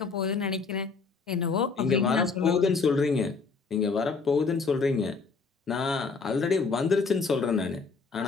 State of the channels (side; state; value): right; quieter; 4.7 dB